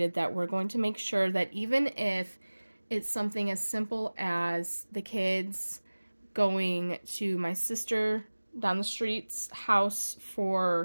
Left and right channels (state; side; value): inverted; both; correlation -1.00